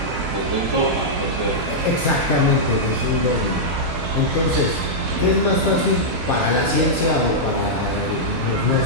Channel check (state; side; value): normal; both; correlation -0.09